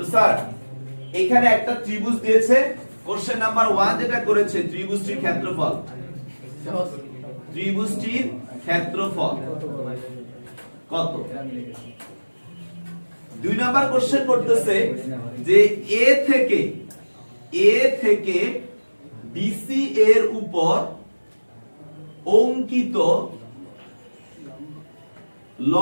স্যার এখানে একটা ত্রিভুজ দিয়েছে, কোশ্চেন নাম্বার 1 যেটা করেছে ত্রিভুজটির ক্ষেত্রফল, সহজ। ত্রিভুজটির ক্ষেত্রফল কত। 2 নাম্বার কোশ্চেন করতেছে যে এ থেকে বিসি এর উপর অঙ্কিত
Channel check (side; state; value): both; inverted; correlation -1.00